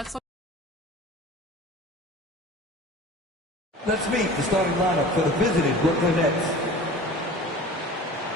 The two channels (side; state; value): both; normal; correlation 0.40